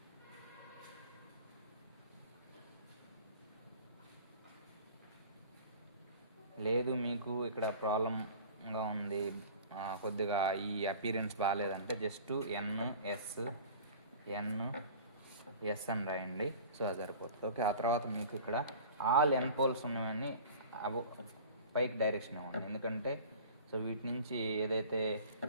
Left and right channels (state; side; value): inverted; both; correlation -0.42